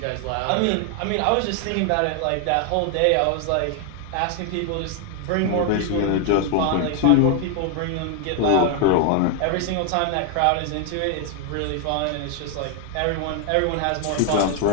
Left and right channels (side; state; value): both; different; correlation 0.00